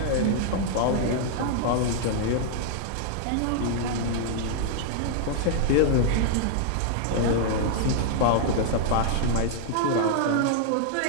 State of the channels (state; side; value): different; both; correlation -0.01